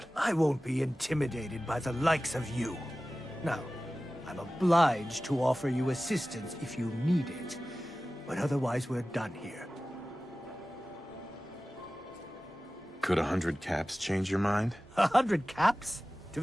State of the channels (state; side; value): normal; both; correlation 0.96